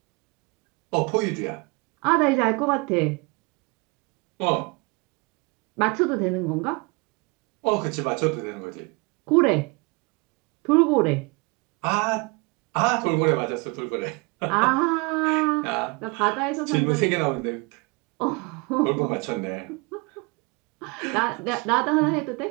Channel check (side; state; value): left; quieter; 28.6 dB